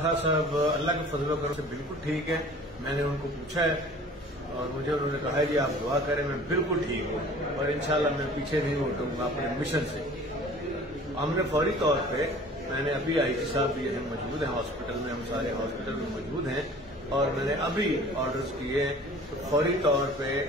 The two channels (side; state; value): both; normal; correlation 0.46